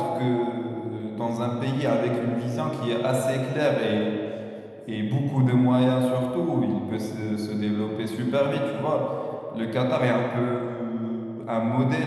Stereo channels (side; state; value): both; identical; correlation 1.00